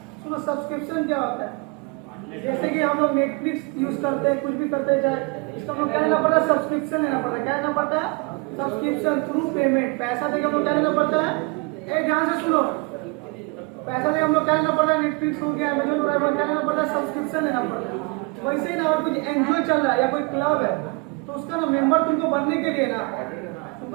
सुनो सब्सक्रिप्शन क्या होता है? जैसे कि हम लोग नेटफ्लिक्स यूज करते हैं, कुछ भी करते हैं, चाहे इसका हम लोग क्या लेना पड़ता है? सब्सक्रिप्शन लेना पड़ता है। क्या लेना पड़ता है? Subscription through payment. पैसा देकर हम लोग क्या लेना पड़ता है? ए ध्यान से सुनो, पैसा देकर हम लोग क्या लेना पड़ता है? नेटफ्लिक्स हो गया, अमेजन प्राइम हो गया, क्या लेना पड़ता है? सब्सक्रिप्शन लेना पड़ता है। वैसे ही ना, अगर कुछ एनजीओ चल रहा है या कोई क्लब है तो उसका ना मेंबर तुमको बनने के लिए ना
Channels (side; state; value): left; quieter; 28.6 dB